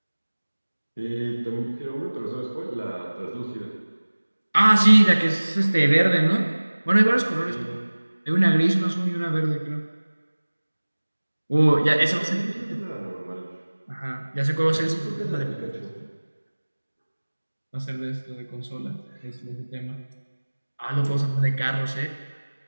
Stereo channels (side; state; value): both; inverted; correlation -1.00